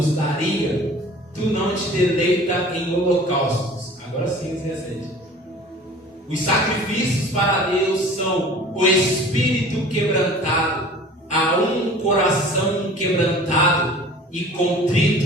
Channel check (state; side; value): normal; both; correlation 0.45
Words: daria. Tu não te deleita em holocaustos. Agora sim, 17. Os sacrifícios para Deus são o espírito quebrantado, a um coração quebrantado e